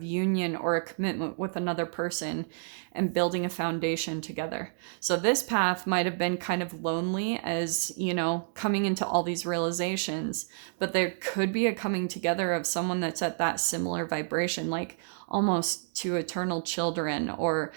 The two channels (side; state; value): left; silent; digital silence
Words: union or a commitment with another person and building a foundation together. So this path might have been kind of lonely, as, you know, coming into all these realizations, but there could be a coming together of someone that's at that similar vibration, like almost to eternal children. Or